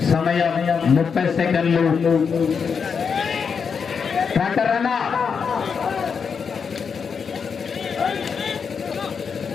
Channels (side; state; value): right; quieter; 6.1 dB